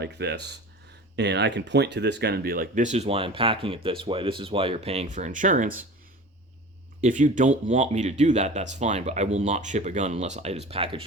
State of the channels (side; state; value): both; normal; correlation 0.37